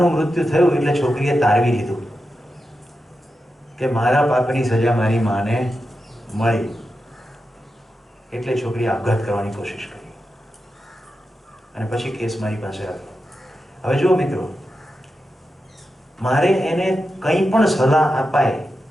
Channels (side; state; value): both; normal; correlation 0.90